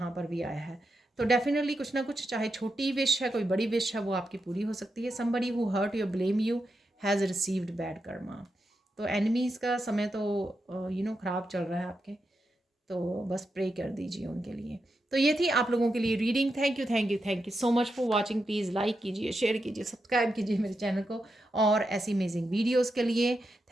पर भी आया है। तो डेफिनेटली कुछ ना कुछ, चाहे छोटी विश है कोई बड़ी विश है, वो आपकी पूरी हो सकती है। Somebody who hurt you blame you has received bad karma. तो एनिमीज़ का समय तो ख़राब चल रहा है आपके, तो बस प्रे कर दीजिए उनके लिए। तो ये थी आप लोगों के लिए reading. Thank you so much for watching. Please like कीजिए, शेयर कीजिए, सब्सक्राइब कीजिए मेरे चैनल को और ऐसी अमेजिंग वीडियोस के लिए।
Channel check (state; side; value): normal; both; correlation 0.86